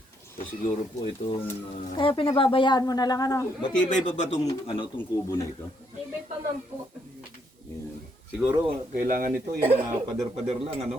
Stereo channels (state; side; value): normal; both; correlation 0.73